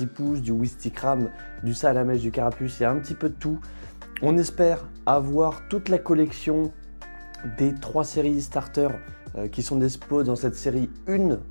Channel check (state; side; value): inverted; both; correlation -1.00